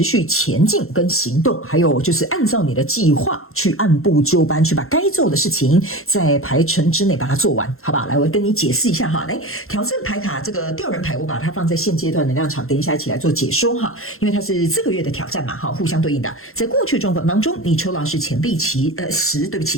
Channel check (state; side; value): late; right; 0.62 ms